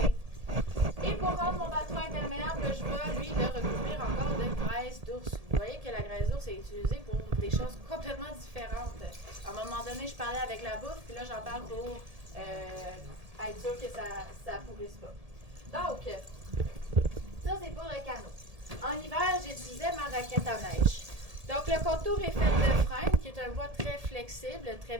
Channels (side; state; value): left; late; 1.7 ms